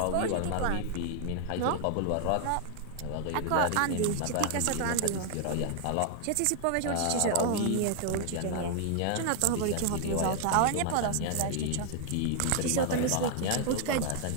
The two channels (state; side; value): different; both; correlation 0.00